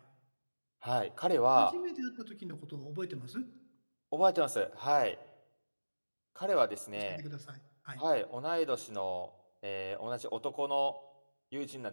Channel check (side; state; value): both; inverted; correlation -1.00